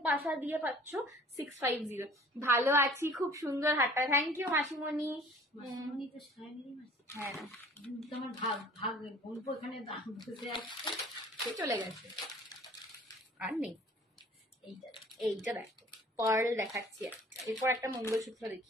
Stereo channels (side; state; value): both; normal; correlation 0.49